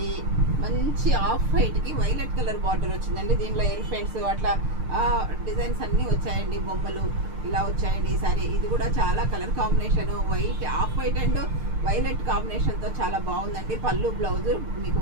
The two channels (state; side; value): late; left; 6.6 ms